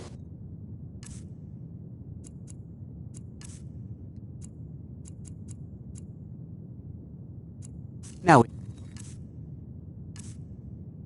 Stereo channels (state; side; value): identical; both; correlation 1.00